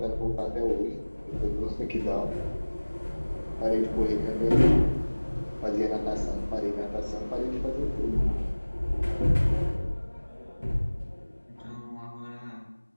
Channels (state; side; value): inverted; both; correlation -1.00